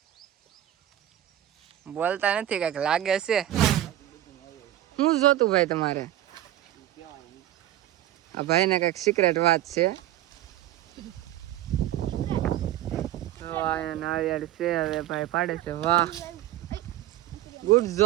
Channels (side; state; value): left; quieter; 13.2 dB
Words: બોલતા નથી, કઈક લાગે છે. શું જોતું ભાઈ તમારે? આ ભાઈ ને કઈક સિક્રેટ વાત છે. નાળિયેર છે, હવે ભાઈ પાડે છે. વાહ, ગુડ